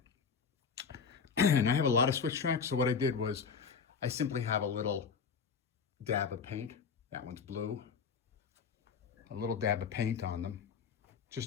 And I have a lot of switch tracks, so what I did was I simply have a little dab of paint. That one's blue. A little dab of paint on them,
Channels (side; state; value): right; quieter; 6.1 dB